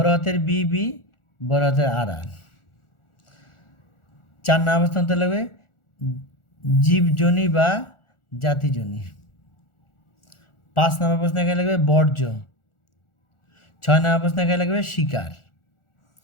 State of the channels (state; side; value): late; right; 1.4 ms